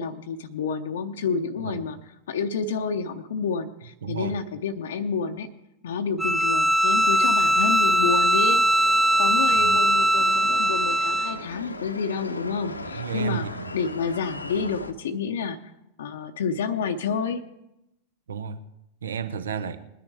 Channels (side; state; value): both; normal; correlation 0.50